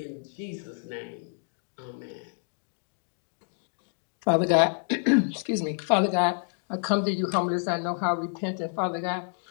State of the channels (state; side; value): silent; right; 59 dB below the other